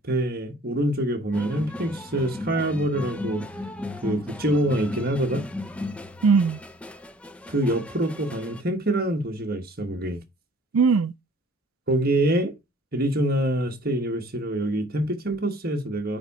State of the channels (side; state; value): both; normal; correlation 0.53